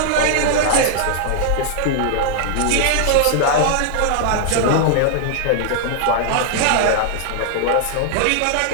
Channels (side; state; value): both; different; correlation -0.01